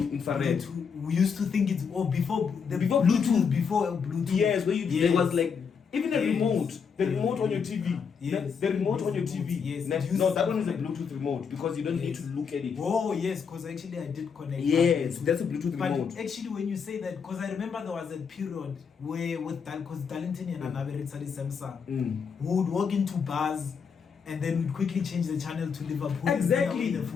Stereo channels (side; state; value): right; quieter; 6.3 dB